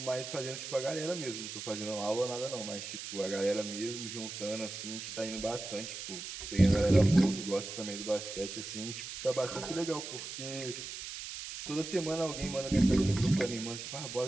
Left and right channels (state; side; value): noise; right; hiss, 8 dB below the sound